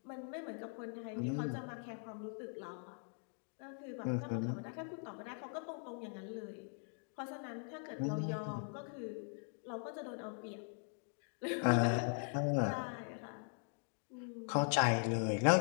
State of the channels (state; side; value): silent; right; 50 dB below the other